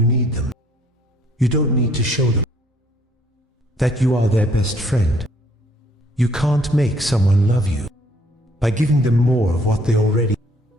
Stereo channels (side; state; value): both; normal; correlation 0.63